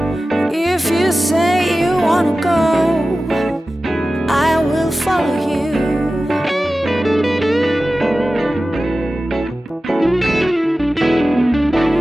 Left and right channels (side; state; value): both; normal; correlation 0.95